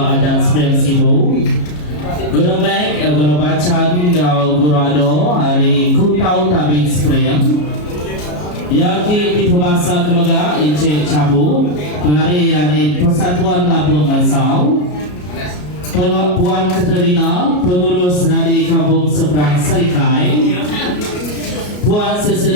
adat Sepiang Sibu. Guru Mek, Guru Bacan, Guru Ado hari Kutau Tabing Spring. Yang di pemasa kemega Encik Cabu penari dari Persatuan Labuan Bansau, Puan Katerina pengurus dari Kampung Seberang Serikai, Puan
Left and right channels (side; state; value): right; late; 33 ms